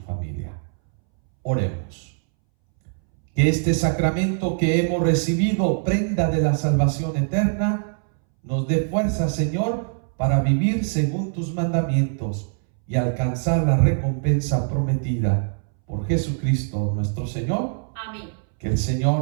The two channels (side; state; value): left; silent; 63 dB below the other